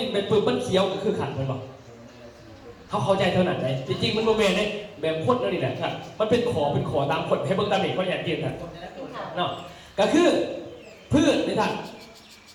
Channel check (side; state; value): both; identical; correlation 1.00